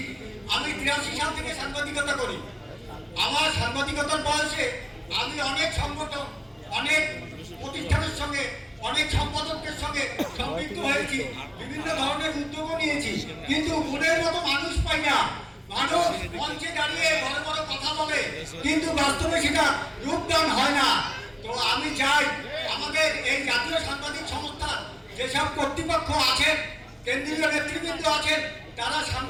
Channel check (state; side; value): identical; both; correlation 1.00